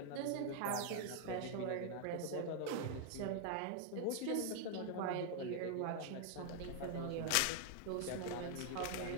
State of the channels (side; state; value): both; different; correlation 0.00